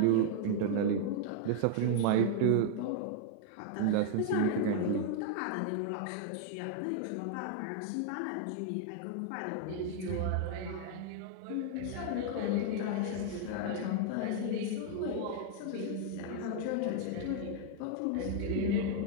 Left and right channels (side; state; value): both; different; correlation -0.01